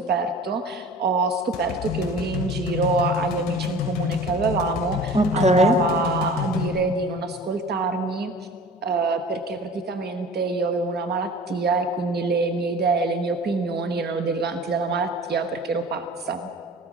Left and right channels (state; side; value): normal; both; correlation 0.42